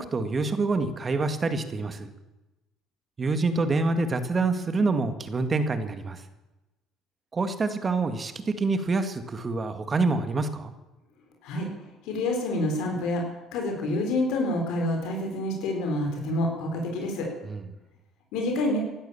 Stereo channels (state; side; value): normal; both; correlation 0.66